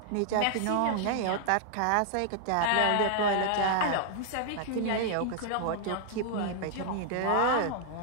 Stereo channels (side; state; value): both; different; correlation -0.01